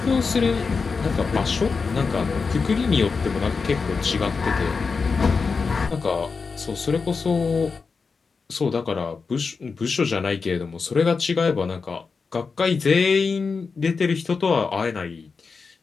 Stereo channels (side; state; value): right; quieter; 4.9 dB